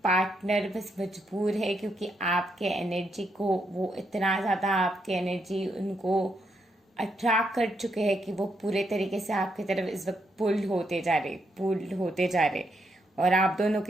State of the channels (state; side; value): normal; both; correlation 0.78